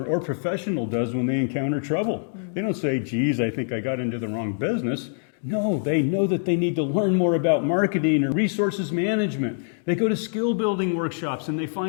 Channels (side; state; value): right; silent; digital silence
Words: or professional does when they encounter trouble. They don't say, geez, I think I got into the wrong business. No, they know that they need to learn more about marketing or resources management. They go to skill building workshops and they